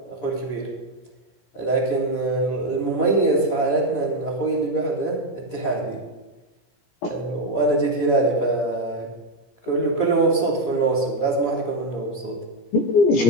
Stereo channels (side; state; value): right; late; 17 ms